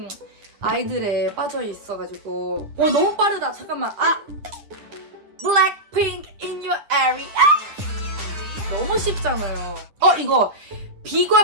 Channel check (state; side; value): late; left; 10 ms